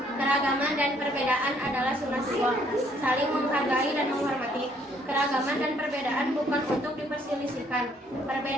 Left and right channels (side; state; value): both; normal; correlation 0.65